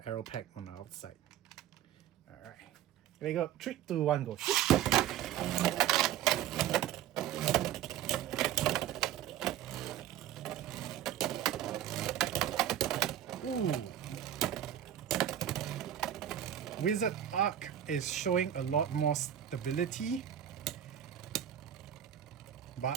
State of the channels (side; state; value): left; quieter; 10.9 dB